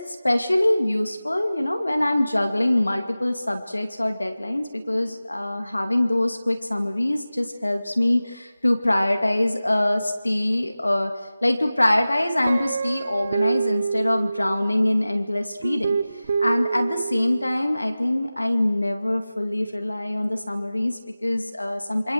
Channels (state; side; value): inverted; both; correlation -0.96